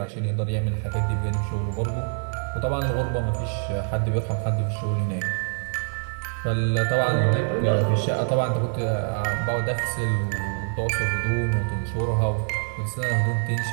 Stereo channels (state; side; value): silent; left; 62 dB below the other